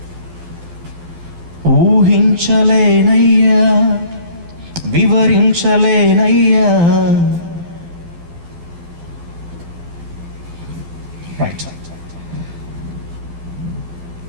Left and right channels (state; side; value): late; left; 12 ms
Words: ఊహించలేనయ్యా, వివరించలేనయ్యా. రైట్.